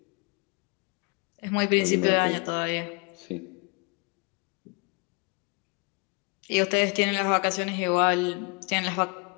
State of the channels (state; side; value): quieter; right; 32.8 dB